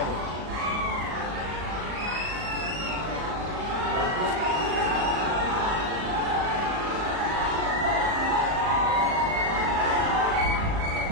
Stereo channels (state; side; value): late; left; 38 ms